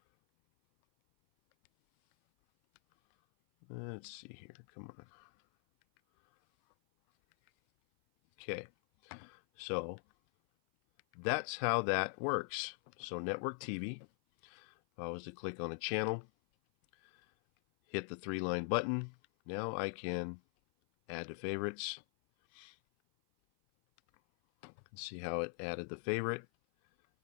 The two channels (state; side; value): silent; right; 50 dB below the other